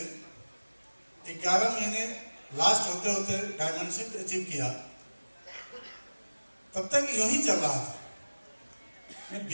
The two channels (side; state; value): both; inverted; correlation -1.00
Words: 11 महीने लास्ट होते होते डायमेंशिप अचीव किया। तब तक यूं ही चल रहा था। मैं